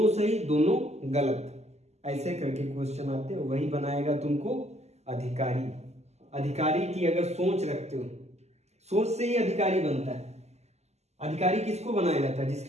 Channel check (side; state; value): left; late; 0.32 ms